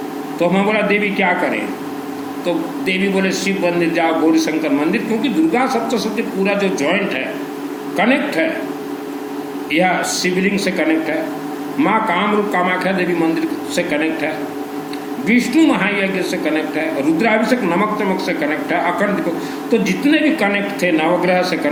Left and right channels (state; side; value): identical; both; correlation 1.00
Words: तो मैं बोला देवी क्या करें। तो देवी बोले शिव मंदिर जाओ, गौरी शंकर मंदिर, क्योंकि दुर्गा सप्तशती पूरा जो जॉइंट है कनेक्ट है, यह शिवलिंग से कनेक्ट है, माँ कामरूप कामाख्या देवी मंदिर से कनेक्ट है, विष्णु महायज्ञ से कनेक्ट है, रुद्राभिषेक नमक तमक से कनेक्ट है, अखंड। तो जितने भी कनेक्ट थे नवग्रह से